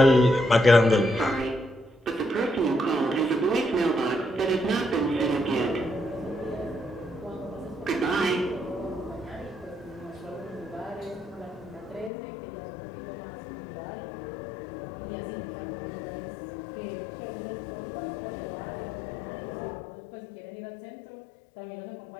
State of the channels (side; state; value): right; drops out; at 12.1 s